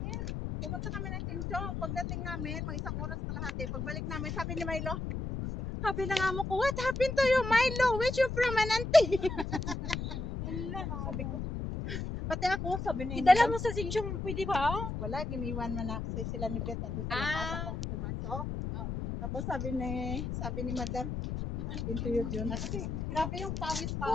Pumunta kami ng Tinsong. Pagdating namin, mga isang oras kalahati. Pagbalik namin, sabi ni Milo, sabi ng amo ko, what happened to you, Milo? Where's your permanente? Wala, sabi ko. Pati ako, sabi ni Idala mo sa Sinchong, pwede ba? wala, giniwan man na sila ni Beth nandun sa lakas ako ang pumasok. Oo. Tapos sabi ni Madam, interview yun. Kasi grabe yung pawis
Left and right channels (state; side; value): noise; left; rumble, 4 dB below the sound